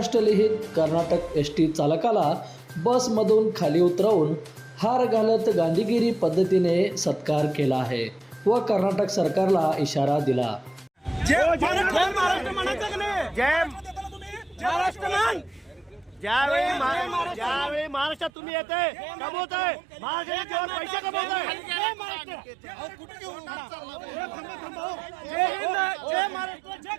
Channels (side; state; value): left; drops out; at 18.3 s